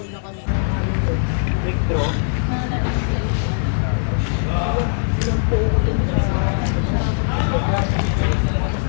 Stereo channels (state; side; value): silent; right; digital silence